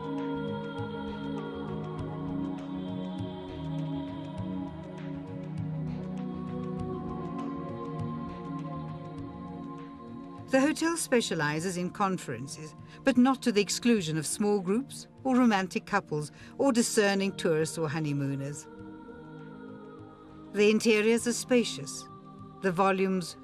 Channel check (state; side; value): identical; both; correlation 1.00